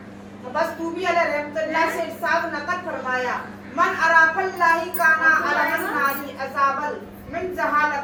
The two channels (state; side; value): identical; both; correlation 1.00